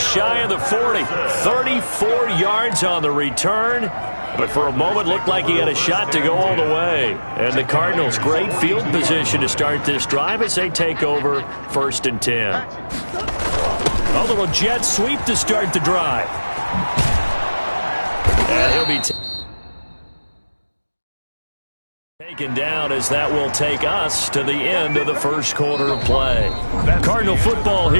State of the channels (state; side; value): inverted; both; correlation -1.00